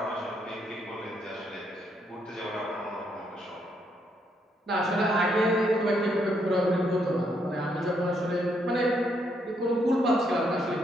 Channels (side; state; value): both; normal; correlation 0.75